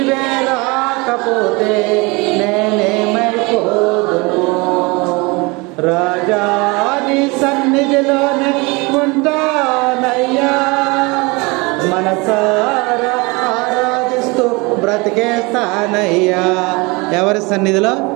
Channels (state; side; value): quieter; left; 26.4 dB